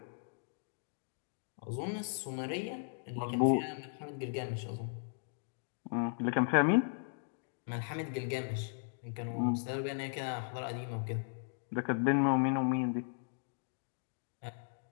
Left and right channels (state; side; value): silent; right; digital silence